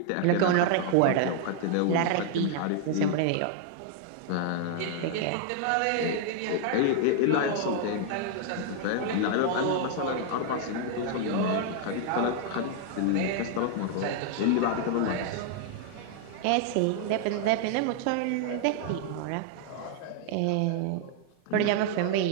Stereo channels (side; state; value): both; different; correlation 0.00